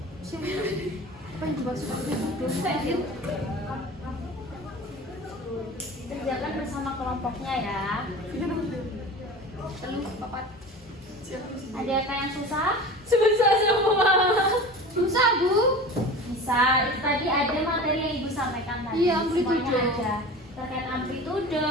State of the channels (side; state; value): both; normal; correlation 0.35